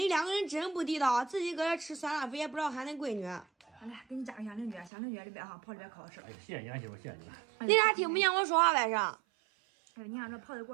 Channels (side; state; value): left; drops out; at 4.9 s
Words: 两个人真不地道，自己搁这吃酸辣粉也不知道喊那闺女。来，给你加个香菱卷，香菱卷里边哈泡里边可好吃。哎，谢谢你啊，媳妇，谢谢你了。你咋听不见我说话呗？是？哎呦，你看这泡的